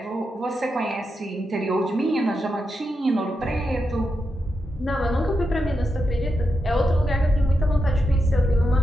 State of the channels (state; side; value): normal; both; correlation 0.86